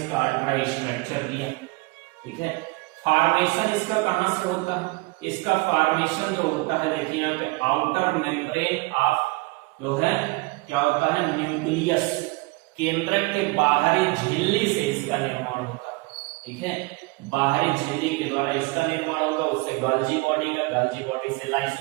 अल्ट्रा स्ट्रक्चर दिया। ठीक है, फॉर्मेशन इसका कहां से होता है, इसका फॉर्मेशन जो होता है देखिए यहाँ पे आउटर मेम्ब्रेन ऑफ जो है क्या होता है, न्यूक्लियस, केंद्रक के बाहरी झिल्ली से इसका निर्माण होता है। ठीक है, बाहरी झिल्ली के द्वारा इसका निर्माण होगा, उससे गाल्जी बॉडी का, गाल्जी बॉडी से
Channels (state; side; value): quieter; left; 25.3 dB